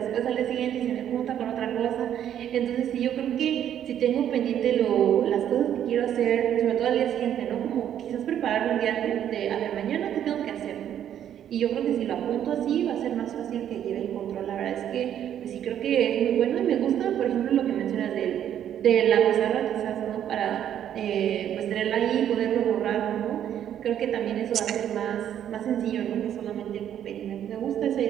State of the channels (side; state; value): left; quieter; 10.2 dB